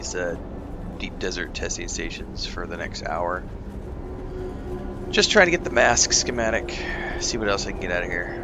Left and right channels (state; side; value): identical; both; correlation 1.00